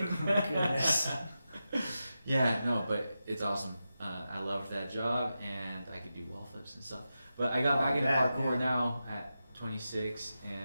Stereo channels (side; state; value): both; inverted; correlation -0.90